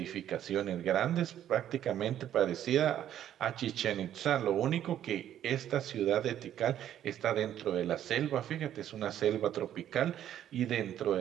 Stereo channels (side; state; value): left; quieter; 11.0 dB